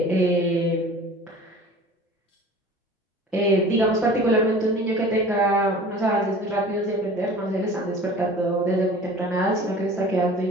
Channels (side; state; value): both; normal; correlation 0.43